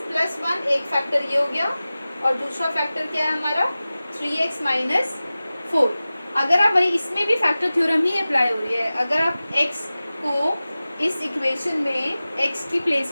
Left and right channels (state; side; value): inverted; both; correlation -0.97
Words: plus 1, एक फैक्टर ये हो गया, और दूसरा फैक्टर क्या है हमारा? 3x minus 4. अगर आप, भाई इसमें भी फैक्टर थ्योरम ही अप्लाई हो रही है. अगर आप x को इस इक्वेशन में x की